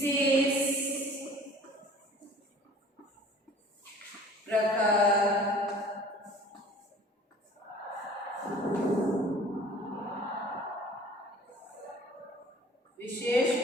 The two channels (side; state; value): both; normal; correlation 0.47